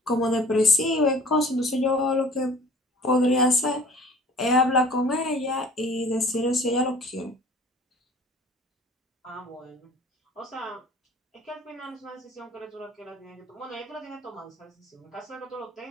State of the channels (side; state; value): both; normal; correlation 0.47